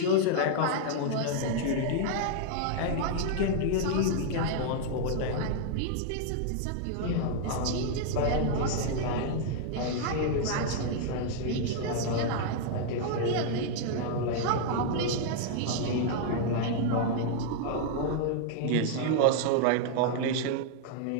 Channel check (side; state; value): both; different; correlation -0.01